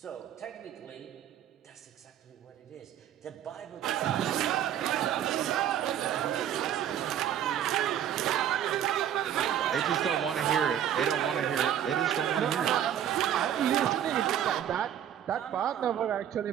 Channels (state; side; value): quieter; left; 10.2 dB